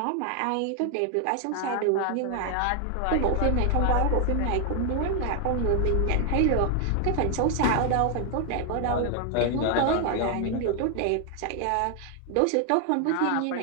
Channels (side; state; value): both; different; correlation 0.00